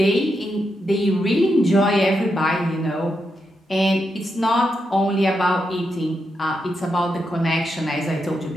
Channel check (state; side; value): normal; both; correlation 0.84